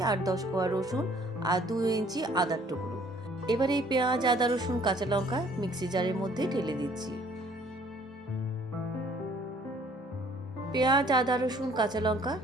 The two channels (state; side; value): normal; both; correlation 0.58